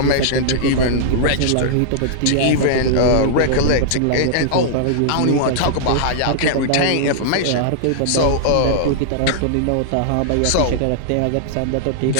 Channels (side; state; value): both; different; correlation -0.02